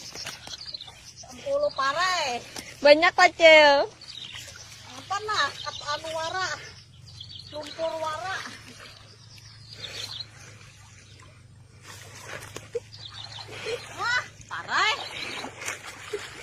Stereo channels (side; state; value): both; identical; correlation 1.00